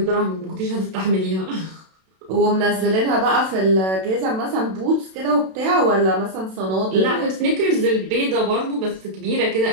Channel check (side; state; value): left; late; 32 ms